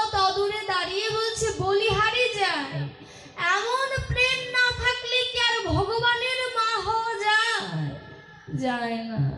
অদূরে দাঁড়িয়ে বলছে, বলিহারি যায়, এমন প্রেম না থাকলে কি আর ভগবান যায় না।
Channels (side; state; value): both; identical; correlation 1.00